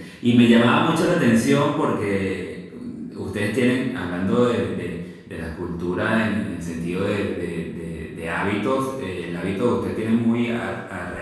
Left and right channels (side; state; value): both; identical; correlation 1.00